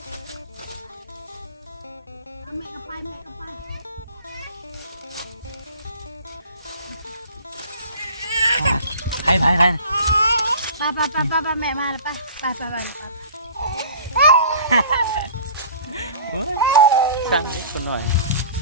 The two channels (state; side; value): inverted; both; correlation -0.45